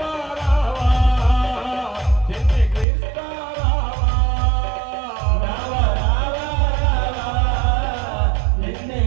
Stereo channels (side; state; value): left; drops out; at 2.9 s